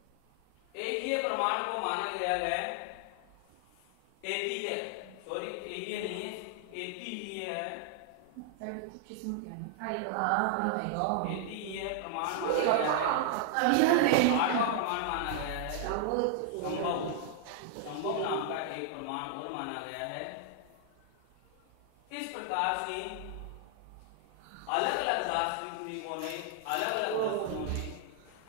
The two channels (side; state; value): both; different; correlation 0.00